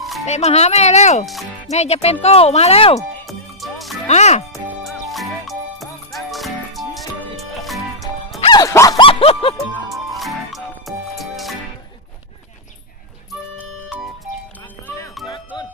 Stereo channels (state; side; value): normal; both; correlation -0.10